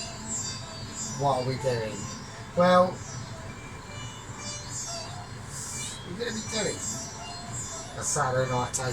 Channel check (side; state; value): both; identical; correlation 1.00